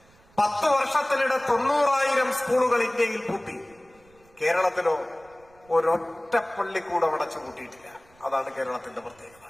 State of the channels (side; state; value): right; noise; rumble, 29 dB below the sound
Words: 10 വർഷത്തിനിടെ 90,000 സ്കൂളുകൾ ഇന്ത്യയിൽ പൂട്ടി. കേരളത്തിലോ ഒരൊറ്റ പള്ളിക്കൂടം അടച്ചു പൂട്ടിയിട്ടില്ല. അതാണ് കേരളത്തിന്റെ പ്രത്യേകത.